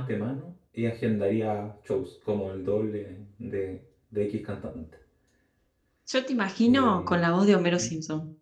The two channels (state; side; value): identical; both; correlation 1.00